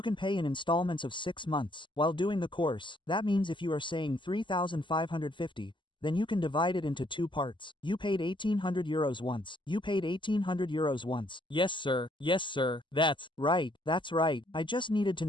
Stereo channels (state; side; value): late; right; 0.24 ms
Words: can pay in installments of 6 months while doing the course. That means if you are saying 3,550, then you can divide it into 2 parts. You paid 1,800 euros once. You paid 1,800 euros once. Yes, sir. Yes, sir. That's right. I just needed to